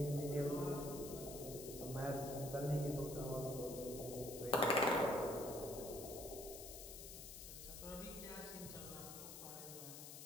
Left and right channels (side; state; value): left; noise; hiss, 10 dB below the sound